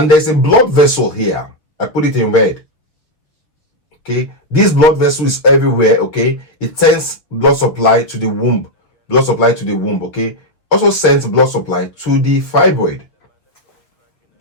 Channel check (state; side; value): late; right; 6.2 ms